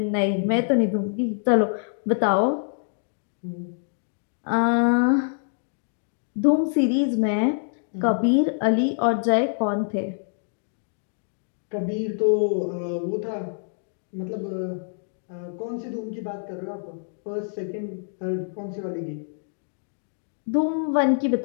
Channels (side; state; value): right; silent; digital silence